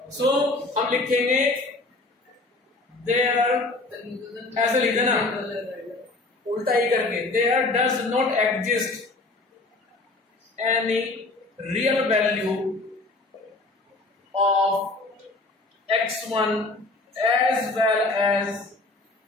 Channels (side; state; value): right; quieter; 3.2 dB